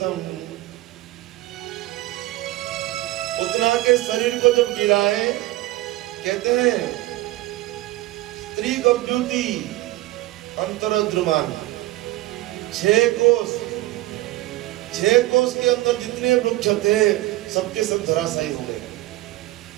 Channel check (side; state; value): left; quieter; 17.5 dB